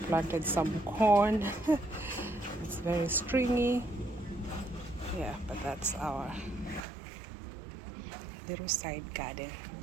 planted some corn. It's very stringy. Yeah, but that's our little side garden.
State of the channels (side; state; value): left; drops out; at 6.9 s